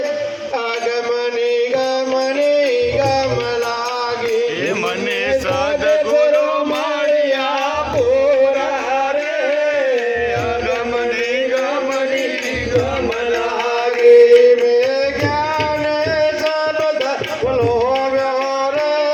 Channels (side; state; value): both; identical; correlation 1.00